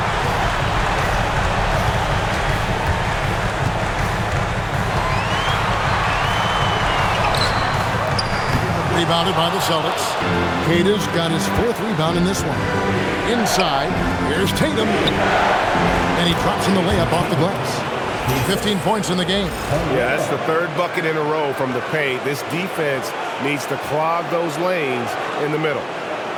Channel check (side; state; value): both; identical; correlation 1.00